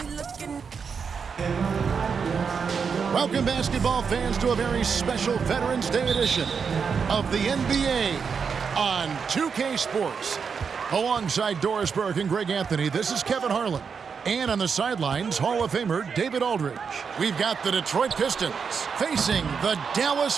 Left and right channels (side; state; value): left; quieter; 6.1 dB